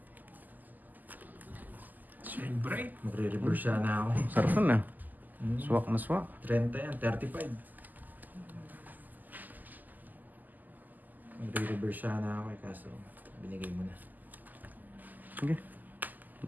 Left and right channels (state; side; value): late; left; 0.084 ms